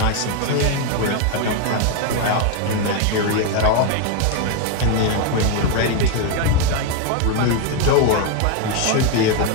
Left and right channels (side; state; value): both; different; correlation 0.02